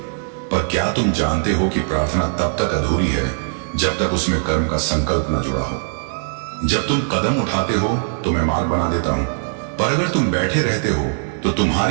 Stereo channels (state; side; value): silent; left; 59 dB below the other